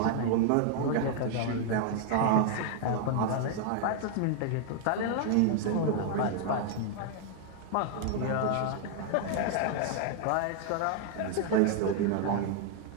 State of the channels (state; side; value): different; both; correlation 0.00